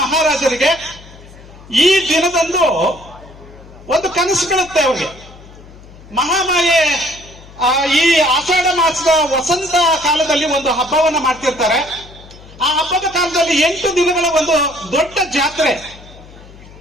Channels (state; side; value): noise; left; hum, 20 dB below the sound